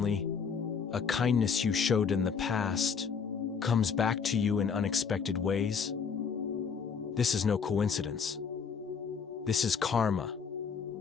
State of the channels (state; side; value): quieter; right; 6.2 dB